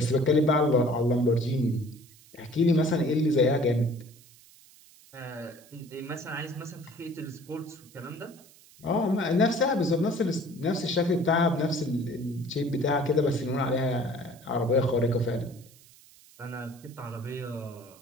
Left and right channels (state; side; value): noise; right; hiss, 25 dB below the sound